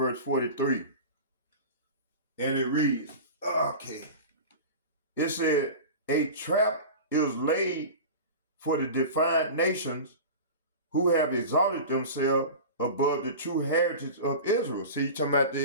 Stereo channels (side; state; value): both; inverted; correlation -0.31